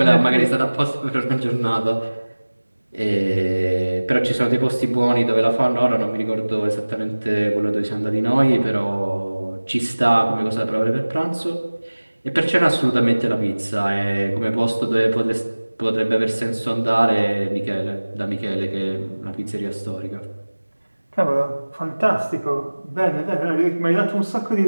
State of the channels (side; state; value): both; inverted; correlation -1.00